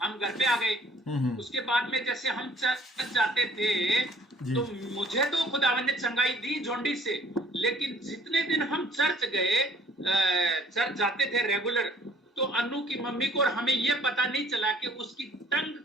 हम घर पे आ गए। उसके बाद में जैसे हम चर्च जाते थे तो मुझे तो खुदावन ने चंगाई दी जॉन्डिस से, लेकिन जितने दिन हम चर्च गए, चर्च जाते थे रेगुलर, तो अनु की मम्मी को और हमें ये पता नहीं चला कि उसकी टंग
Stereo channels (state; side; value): normal; both; correlation 0.56